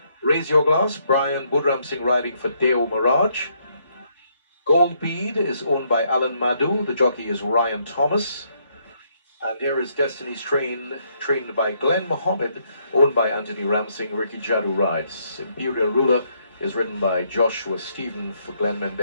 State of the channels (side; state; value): both; inverted; correlation -0.73